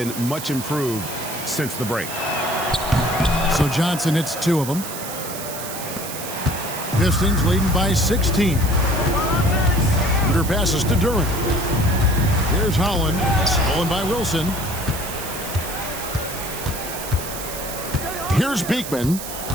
much improved since the break. So Johnson hits 2 of them. Pistons leading by 16. Shooter passes to Duran. Here's Holland. Stolen by Wilson. Here's Beekman.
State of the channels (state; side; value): noise; right; hiss, 9 dB below the sound